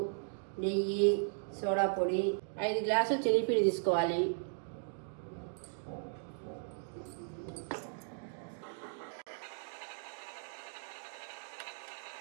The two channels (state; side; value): silent; left; digital silence